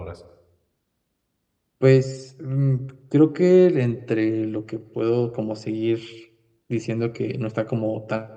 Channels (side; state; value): both; identical; correlation 1.00